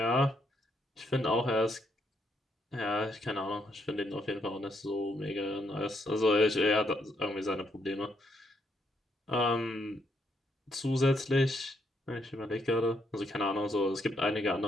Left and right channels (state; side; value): normal; both; correlation 0.75